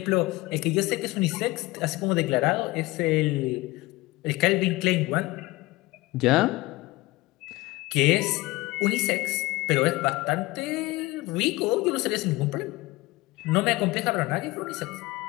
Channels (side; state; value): right; quieter; 20.6 dB